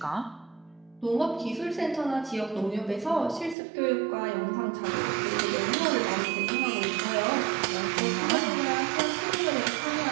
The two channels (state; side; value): drops out; left; at 3.6 s